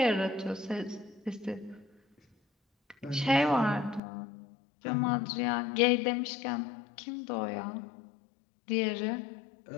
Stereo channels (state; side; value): drops out; right; at 4.0 s